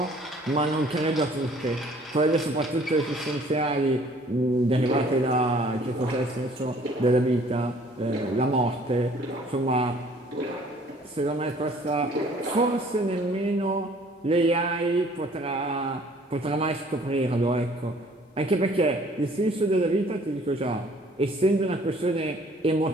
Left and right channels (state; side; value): normal; both; correlation 0.56